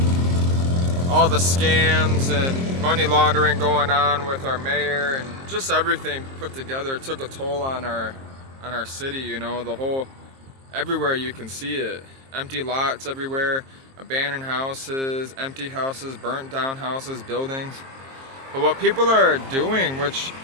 all the scams and money laundering going on with our mayor and just everything put together, it took a toll on our city. You know, the whole, everywhere you can see it, empty lots everywhere, abandoned houses, empty houses, burnt down houses, buildings. But what people are doing, which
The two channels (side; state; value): left; late; 22 ms